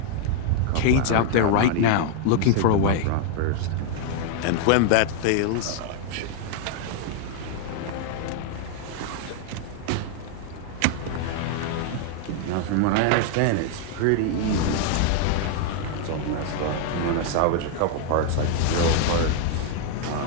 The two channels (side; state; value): both; different; correlation 0.00